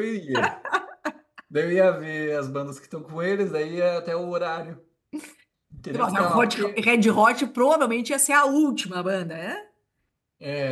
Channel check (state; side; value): identical; both; correlation 1.00